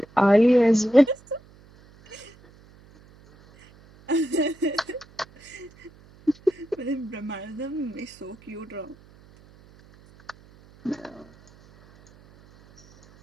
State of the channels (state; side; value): noise; right; hum, 26 dB below the sound